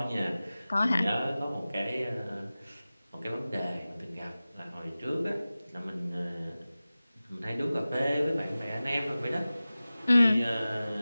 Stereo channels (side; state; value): both; inverted; correlation -0.97